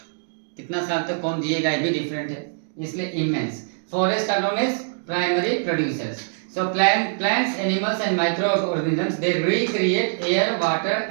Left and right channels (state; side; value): silent; left; digital silence